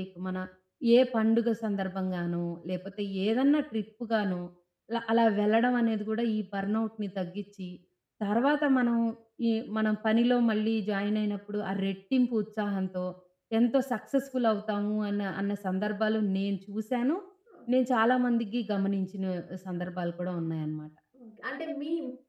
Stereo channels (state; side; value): identical; both; correlation 1.00